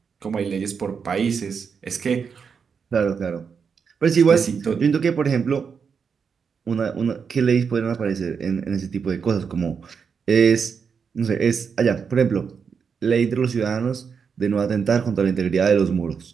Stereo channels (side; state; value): left; quieter; 6.2 dB